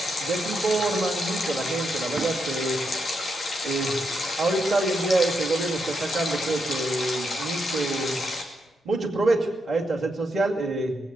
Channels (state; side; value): normal; both; correlation 0.81